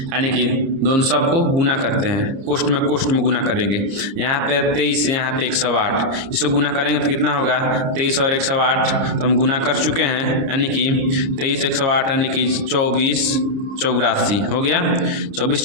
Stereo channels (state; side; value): late; left; 30 ms